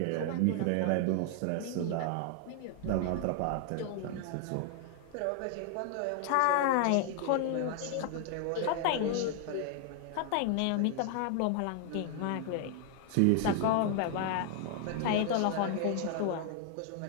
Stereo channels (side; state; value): both; different; correlation 0.00